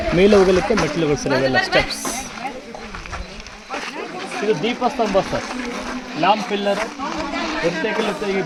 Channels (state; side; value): identical; both; correlation 1.00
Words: ಮೇಲೆ ಹೋಗಲಿಕ್ಕೆ ಮೆಟ್ಟಿಲುಗಳು ಸರ್. ಇವೆಲ್ಲ ಸ್ಟೆಪ್ಸ್. ಇದು ದೀಪಸ್ತಂಭ ಸರ್, ಲ್ಯಾಂಪ್ ಪಿಲ್ಲರ್. ಈಗ